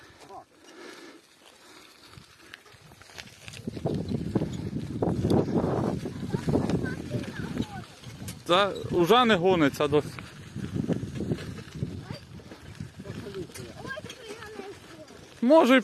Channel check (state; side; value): identical; both; correlation 1.00